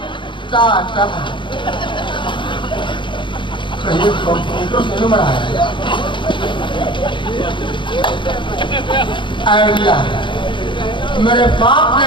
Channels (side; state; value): right; late; 0.23 ms